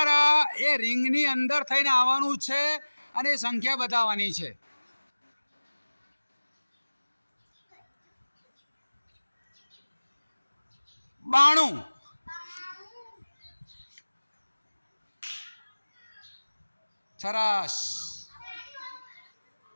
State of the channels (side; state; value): both; inverted; correlation -1.00